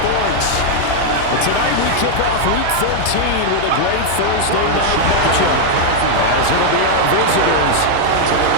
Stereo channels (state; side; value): different; both; correlation 0.00